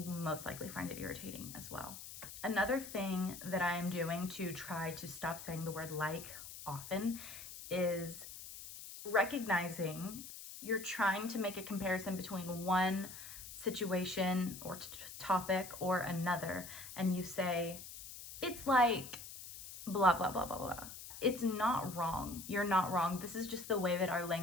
most likely find it irritating as well. Another thing that I am doing to try to stop saying the word like often is recognizing you're trying to make a comparison between one situation or topic or another, and you say, it's like blah, blah, blah, blah, blah. It's not wrong. You're not wrong. This is just the way that our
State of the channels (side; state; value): left; noise; hiss, 12 dB below the sound